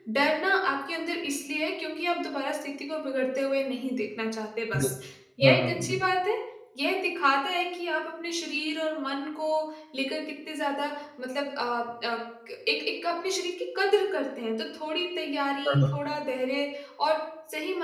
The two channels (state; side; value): identical; both; correlation 1.00